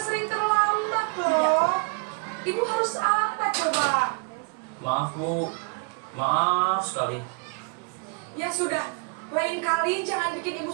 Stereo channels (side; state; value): left; quieter; 35.5 dB